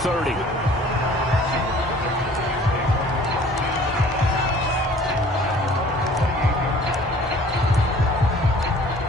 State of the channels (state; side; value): normal; both; correlation 0.52